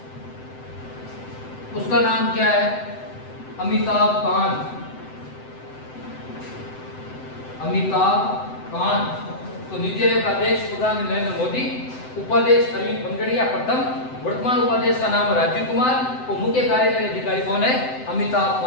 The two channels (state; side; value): late; right; 7.8 ms